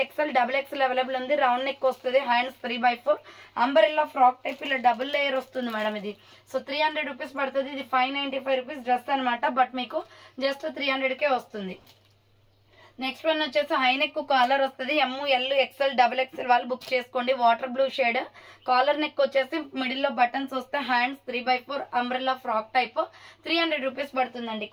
XL XXL available ఉంది. రౌండ్ నెక్ వస్తుంది. Hands 3/4 umbrella frock type. ఇలా డబుల్ లేయర్ వస్తుంది మేడం ఇది. సో 300 రూపీస్ పడుతుంది. ఇది 595 రూపీస్ డ్రెస్ అనమాట. బట్ మీకు జస్ట్ 300కే వస్తుంది. నెక్స్ట్ వన్ వచ్చేసి హైనెక్ కాలర్ వస్తుంది. ML XL XXL వాళ్ళు బుక్ చేసుకోండి. Water blue shade. Collar neck వచ్చేసి మిడిల్ లో బటన్స్ వస్తే. Hands 3/4 umbrella frock type. 300 rupees పడుతుందండి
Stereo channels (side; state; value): both; identical; correlation 1.00